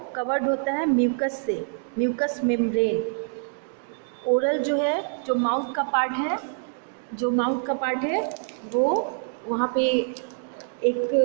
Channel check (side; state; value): left; silent; digital silence